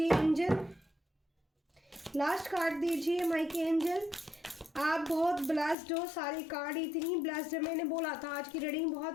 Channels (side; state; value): right; drops out; at 5.8 s